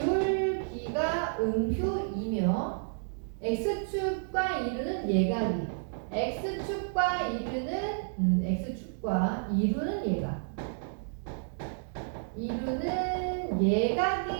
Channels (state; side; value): silent; left; digital silence